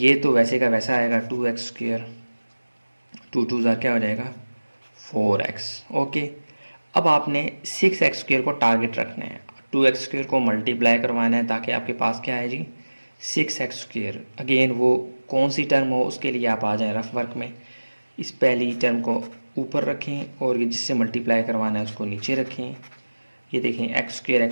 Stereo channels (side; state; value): both; inverted; correlation -1.00